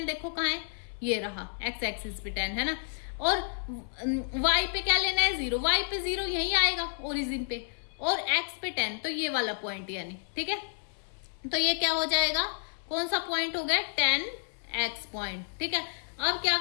देखो कहाँ है, ये रहा x एक्सिस पे 10 है ना, और y पे क्या लेना है 0, y पे 0 यही आएगा ओरिजिन पे, और x पे 10 तो ये वाला पॉइंट यानी, ठीक है। तो ये क्या हो जाएगा, कौन सा पॉइंट हो गया 10x पॉइंट, ठीक है। अब क्या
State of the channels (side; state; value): right; silent; 58 dB below the other